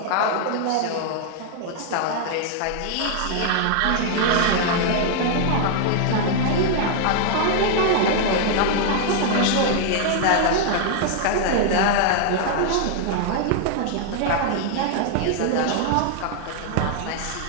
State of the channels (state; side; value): different; both; correlation -0.01